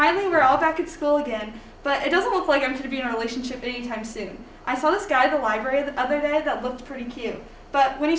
we're all back at school again, but it doesn't look like I'm going to be in a relationship anytime soon. I saw this guy at the library the other day that looked pretty cute, but when he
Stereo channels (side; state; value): both; identical; correlation 1.00